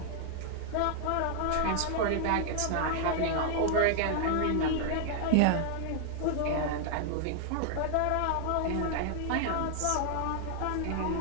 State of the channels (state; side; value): different; both; correlation 0.00